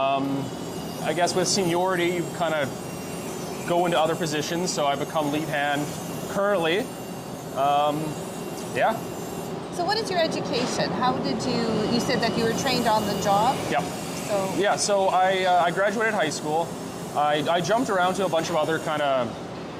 I guess with seniority, you kind of go into other positions, so I become lead hand currently. Yeah. So what is your education? How did you said that you were trained on the job? Yep. So. Yeah, so I graduated high school. I jumped around to a bunch of other kind of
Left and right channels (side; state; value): both; identical; correlation 1.00